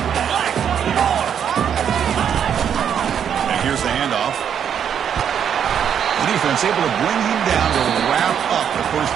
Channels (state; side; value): quieter; left; 8.4 dB